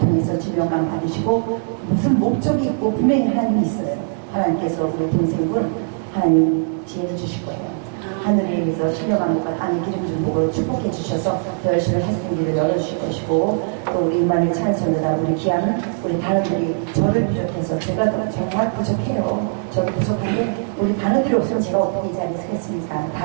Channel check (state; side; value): silent; left; digital silence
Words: 질병감 받으시고 무슨 목적이 있고 분명히 하나님이 있어요. 하나님께서 우리 동생분 하나님 지혜를 주실 거예요. 하늘에 위해서 신령한 것과 땅의 기름 좀 보고 축복해 주셔서 더 열심히 하시는 길을 열어주실 것이고 또 우리 임마누엘 찬송보다 우리 귀한 우리 단원들이 저를 비롯해서 제가 정말 부족해요. 저도 부족한데 우리 단원들이 없으면 제가 어떻게 이 자리에 서겠습니까?